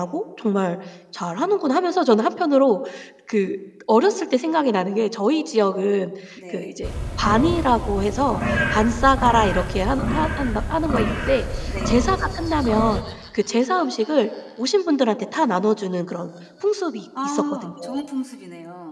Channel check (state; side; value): identical; both; correlation 1.00